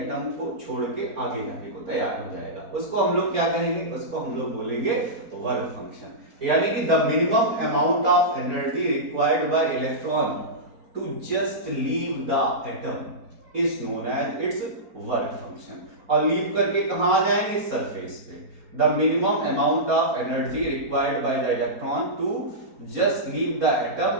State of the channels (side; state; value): left; late; 4.3 ms